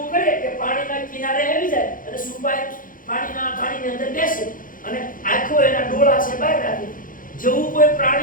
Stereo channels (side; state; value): right; late; 0.40 ms